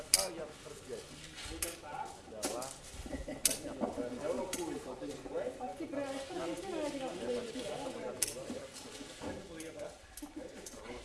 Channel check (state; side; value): identical; both; correlation 1.00